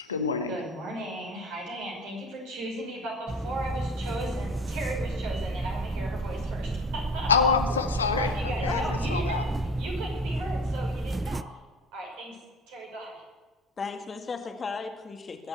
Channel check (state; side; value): normal; both; correlation 0.36